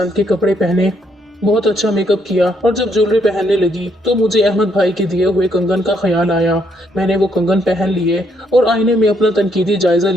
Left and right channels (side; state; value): both; normal; correlation 0.72